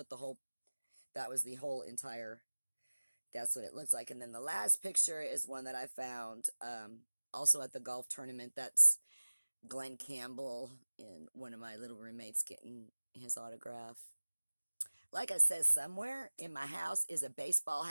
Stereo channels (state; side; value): inverted; both; correlation -1.00